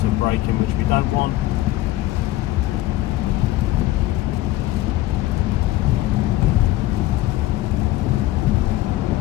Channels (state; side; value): quieter; right; 16.0 dB